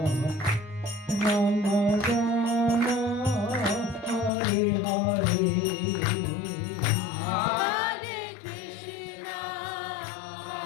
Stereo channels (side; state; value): right; drops out; at 4.3 s